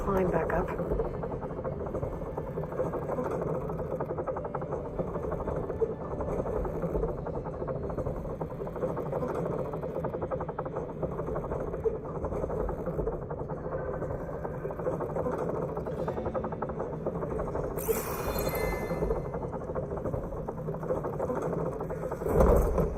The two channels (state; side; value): identical; both; correlation 1.00